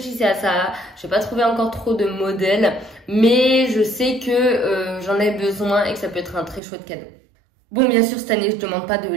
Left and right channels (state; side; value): drops out; left; at 6.6 s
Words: à ça, j'ai pas trouvé encore trop de modèles, mais je sais que j'en ai besoin et que ça peut être un très chouette cadeau. Bon, bien sûr, cette année, je demande pas de